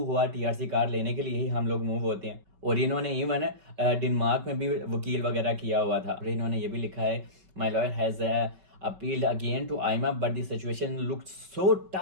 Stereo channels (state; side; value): late; left; 5.2 ms